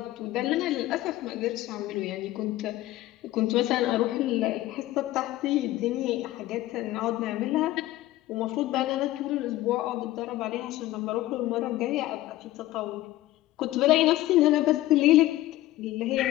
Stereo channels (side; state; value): right; quieter; 16.1 dB